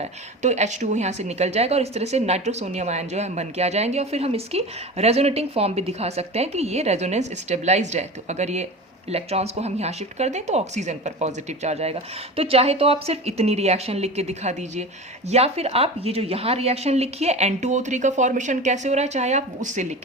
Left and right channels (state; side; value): normal; both; correlation 0.31